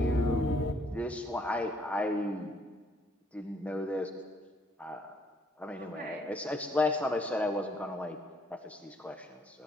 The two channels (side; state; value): both; normal; correlation 0.66